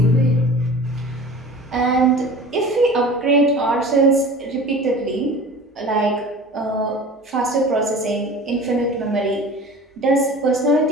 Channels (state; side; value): normal; both; correlation 0.39